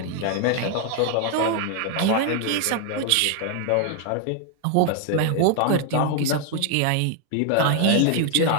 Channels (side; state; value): both; different; correlation 0.00